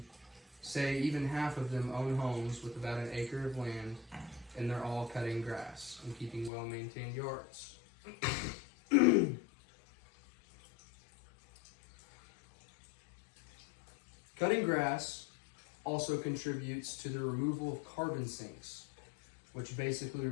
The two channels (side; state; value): right; drops out; at 6.5 s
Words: Say even half of them own homes with about an acre of land, and they're all cutting grass and keeping well-maintained yards. Cutting grass also contributes to the removal of carbon sinks, which basically